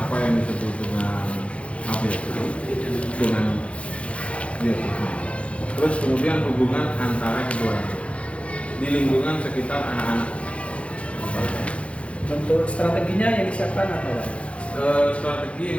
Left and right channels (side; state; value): right; late; 0.062 ms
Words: yang disebut dengan abiotik dengan biotik. Terus kemudian hubungan antara keduanya di lingkungan sekitar anak-anak. Untuk strateginya yang disiapkan apa Pak? Strategi